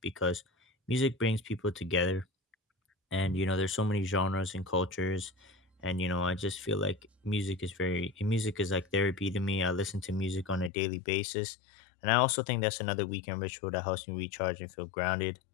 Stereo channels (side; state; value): right; drops out; at 10.7 s